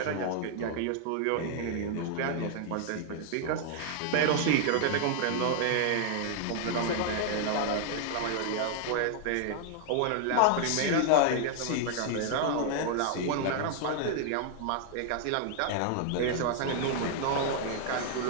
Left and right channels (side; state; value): both; different; correlation 0.00